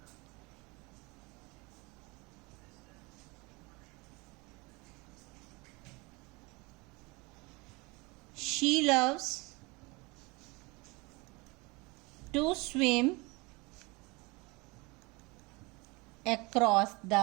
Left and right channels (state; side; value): quieter; left; 25.8 dB